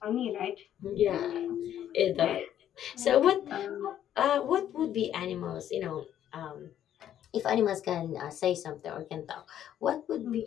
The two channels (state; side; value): quieter; right; 10.8 dB